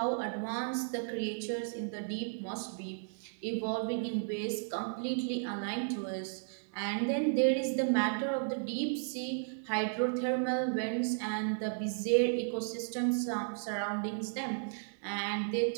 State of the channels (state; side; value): silent; left; digital silence